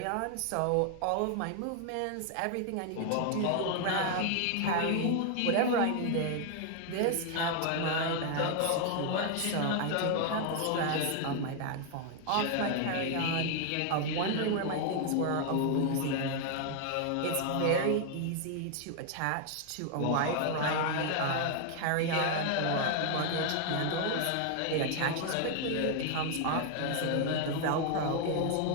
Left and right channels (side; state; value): both; different; correlation 0.00